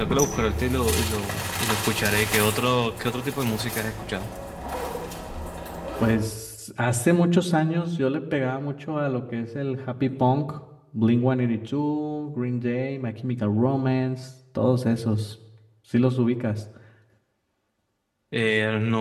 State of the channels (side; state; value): both; identical; correlation 1.00